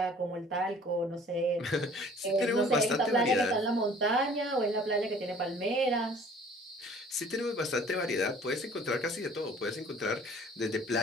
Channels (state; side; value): normal; both; correlation 0.51